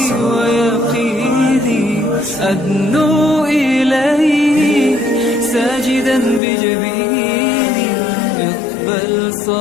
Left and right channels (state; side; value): drops out; right; at 6.4 s